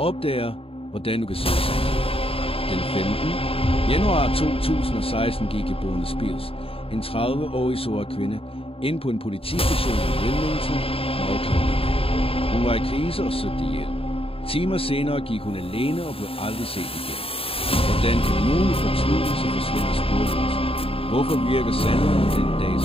opdager, hvordan du kan se sandt. Den 15. januar 2016 gik Bone Spears, en 30-årig sort kvinde, ind på en politistation i Wilmington, North Carolina. Hun var i krise og søgte hjælp. Timer senere gik hun alene og blev aldrig set igen. Hvordan kan nogen fortvivlelse forsvinde sporløst? Hvorfor virker sandheden den dag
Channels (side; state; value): right; late; 0.27 ms